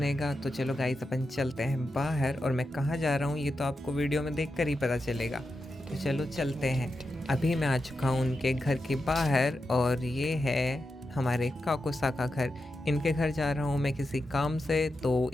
तो चलो गाइस अपन चलते हैं बाहर, और मैं कहाँ जा रहा हूँ ये तो आपको वीडियो में देखकर ही पता चलेगा। तो चलो चलते हैं। अभी मैं आ चुका हूँ उनके घर के बाहर, और ये है हमारे काकोसा का घर। इनके घर जा रहा हूँ मैं किसी काम से। तो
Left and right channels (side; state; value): both; normal; correlation 0.88